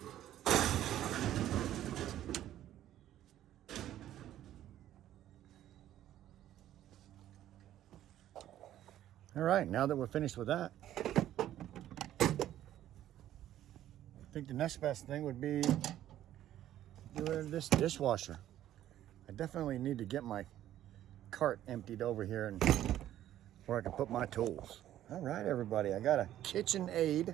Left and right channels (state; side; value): quieter; left; 12.4 dB